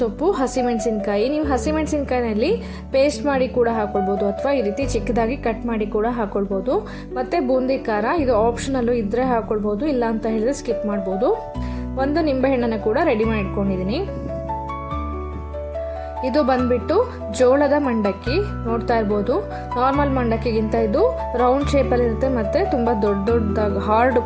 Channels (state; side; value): identical; both; correlation 1.00